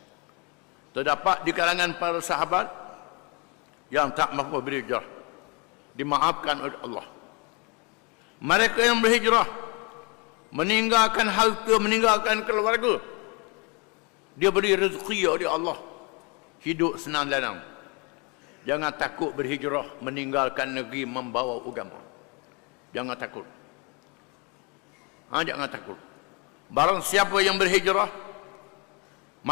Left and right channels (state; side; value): quieter; right; 31.1 dB